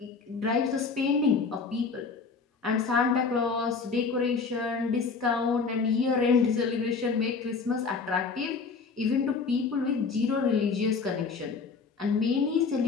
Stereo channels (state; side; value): quieter; right; 4.9 dB